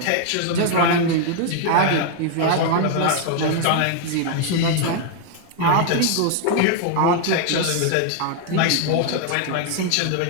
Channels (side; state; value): both; different; correlation 0.00